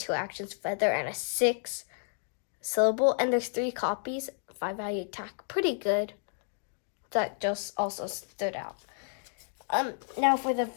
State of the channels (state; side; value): silent; right; digital silence